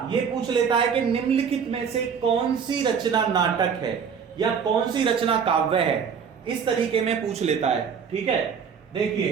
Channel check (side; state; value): left; quieter; 6.8 dB